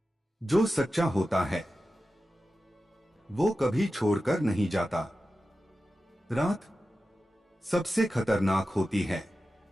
जो सच्चा होता है वो कभी छोड़कर नहीं जाता। रात सबसे खतरनाक होती है,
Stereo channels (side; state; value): both; normal; correlation 0.93